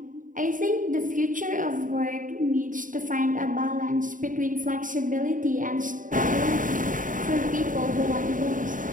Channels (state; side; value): late; left; 0.38 ms